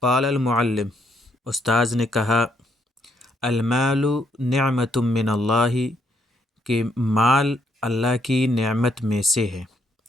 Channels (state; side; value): normal; both; correlation 0.72